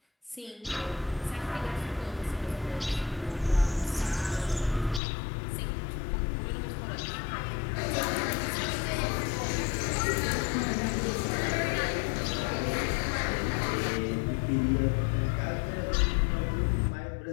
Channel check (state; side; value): drops out; right; at 5.0 s